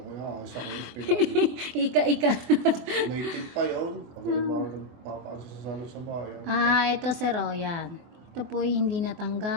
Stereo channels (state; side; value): late; left; 24 ms